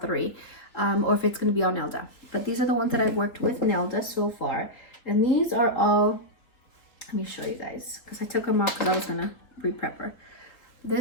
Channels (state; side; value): late; right; 4.0 ms